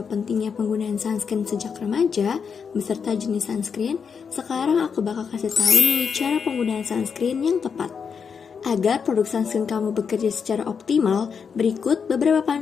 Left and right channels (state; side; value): quieter; right; 6.3 dB